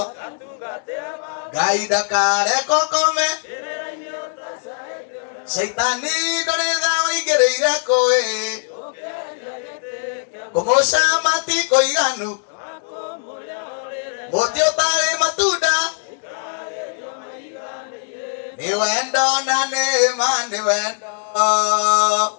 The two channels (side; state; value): right; silent; 65 dB below the other